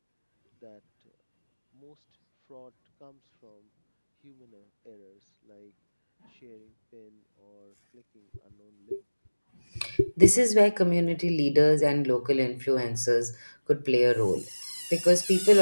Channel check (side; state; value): both; inverted; correlation -1.00